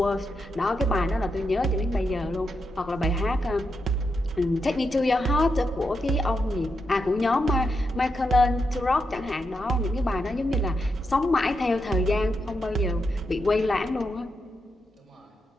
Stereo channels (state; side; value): normal; both; correlation 0.84